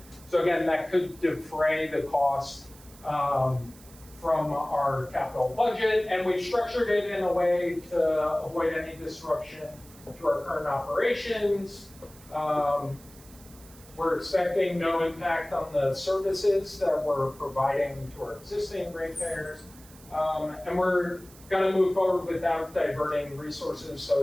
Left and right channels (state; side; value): noise; right; hiss, 22 dB below the sound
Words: So again, that could defray the cost from our capital budget, and we've structured it in a way to avoid any disruption to our current operations. We're expecting no impact on the services that we're providing to our existing ratepayers, and we're going to move forward without diverting resources,